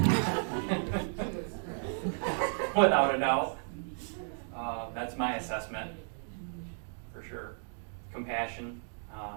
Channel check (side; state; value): left; silent; 55 dB below the other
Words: without a doubt. That's my assessment, for sure. Compassion,